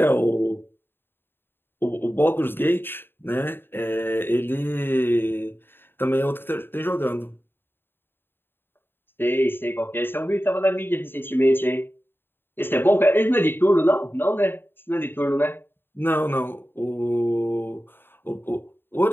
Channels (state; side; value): late; right; 0.10 ms